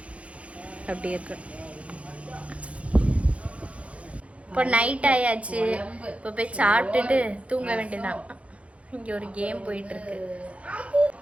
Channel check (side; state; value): left; late; 0.063 ms